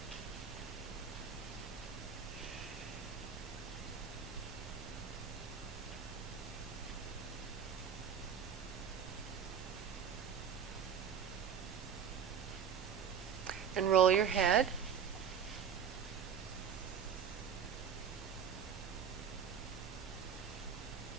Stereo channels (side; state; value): left; quieter; 7.7 dB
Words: And roll your head.